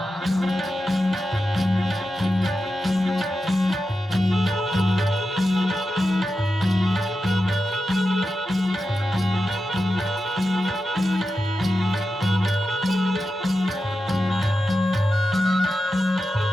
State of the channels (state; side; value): normal; both; correlation 0.90